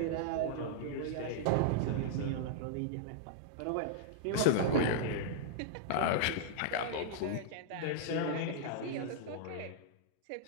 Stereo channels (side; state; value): both; different; correlation -0.02